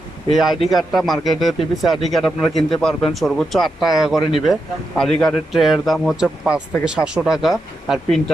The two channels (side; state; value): both; normal; correlation 0.86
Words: এই আইডি কার্ডটা মার্কেটে পিভিসি আইডি কার্ড আপনারা কিনতে পারবেন সর্বোচ্চ 8 টাকা করে নিবে। আইডি কার্ডের ট্রের দাম হচ্ছে 5 থেকে 700 টাকা, আর